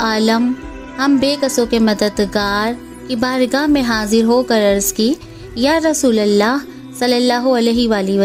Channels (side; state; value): both; identical; correlation 1.00